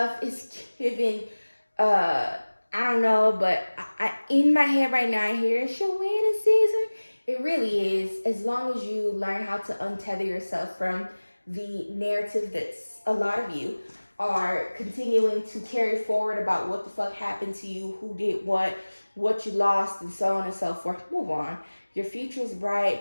it's giving, I don't know, but I in my head right now, I hear it's your wedding season. It really is, as long as you learn how to untether yourself from the narrative that's a lot of you are continuing to carry forward about what the fuck happened to you, who did what you lost, and so on and so forth. Move on. Your future is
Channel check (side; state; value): both; inverted; correlation -1.00